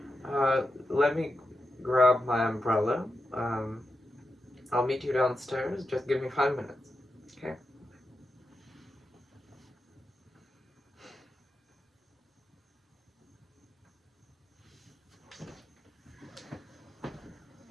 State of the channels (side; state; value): both; normal; correlation 0.88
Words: Let me grab my umbrella. I'll meet you downstairs. Just give me 5 minutes. Okay?